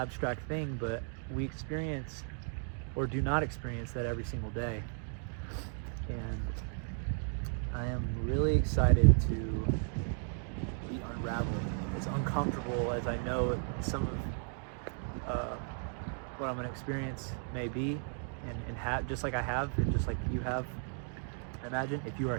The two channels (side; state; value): left; silent; 54 dB below the other